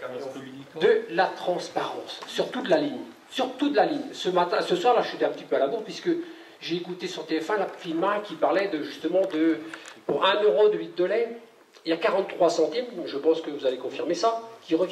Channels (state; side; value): identical; both; correlation 1.00